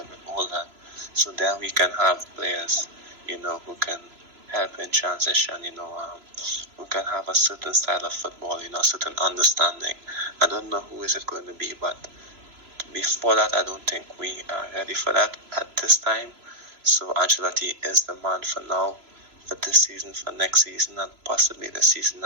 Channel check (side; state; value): left; late; 3.0 ms